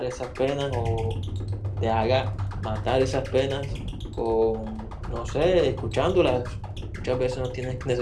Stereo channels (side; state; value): both; identical; correlation 1.00